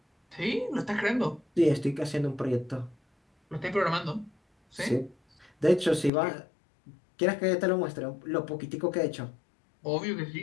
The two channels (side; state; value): right; drops out; at 6.1 s